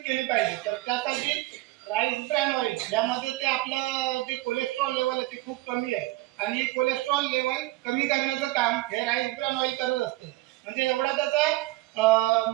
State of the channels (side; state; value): left; quieter; 19.0 dB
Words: केली पाहिजे. तर त्यासाठी राईस ब्रॅन ऑइल यामध्ये ते आपलं जे कोलेस्ट्रॉल लेवल आहे ते खूप कमी आहे आणि कोलेस्ट्रॉल लेवल कमी करण्याचं काम हे राईस ब्रॅन ऑइल करत असतं. म्हणजे एवढा त्याचा